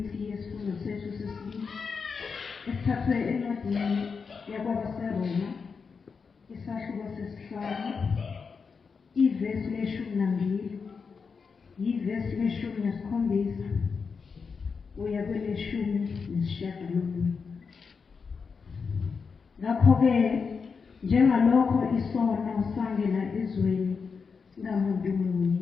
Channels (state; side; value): quieter; right; 5.4 dB